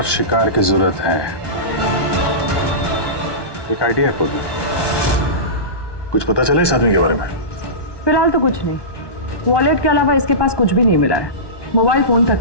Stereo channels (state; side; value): late; right; 1.2 ms